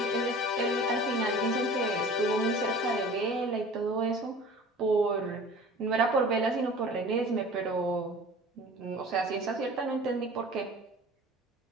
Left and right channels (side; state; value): both; normal; correlation 0.42